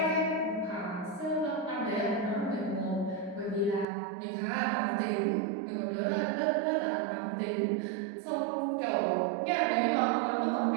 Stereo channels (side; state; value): left; drops out; at 3.9 s